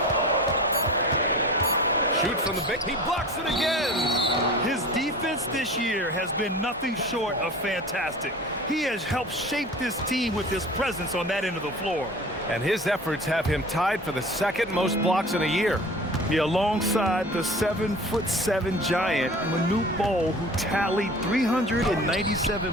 Shoot from the big. He blocks it again. His defense this year has been nothing short of fantastic. He has helped shape this team with his presence on that end of the floor. And his efforts have him tied for the 2nd most blocks in a year. Yeah, alongside the 7'7" giant, Manute Bol, who tallied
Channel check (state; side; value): normal; both; correlation 0.40